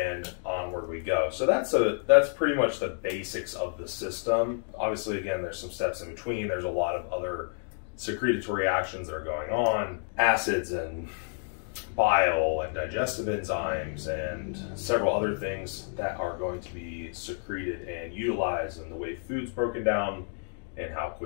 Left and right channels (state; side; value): silent; right; 58 dB below the other